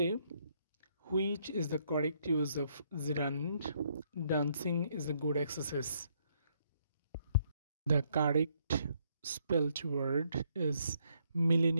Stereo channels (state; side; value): inverted; both; correlation -0.71